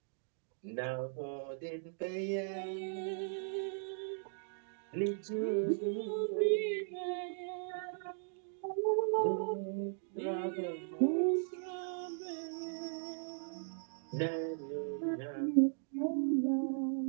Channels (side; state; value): left; silent; digital silence